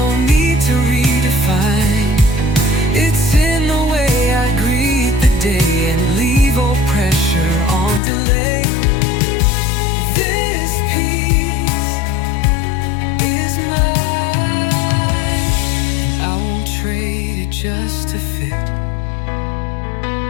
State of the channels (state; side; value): drops out; right; at 8.0 s